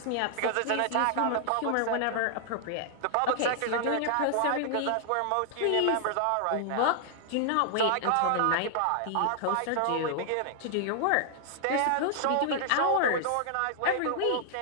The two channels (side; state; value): both; different; correlation 0.00